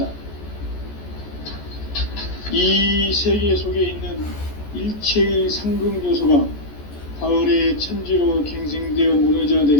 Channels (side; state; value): right; late; 14 ms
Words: 이 세계 속에 있는 일체의 상금 요소가 가을의 천지로 갱생되어 무너져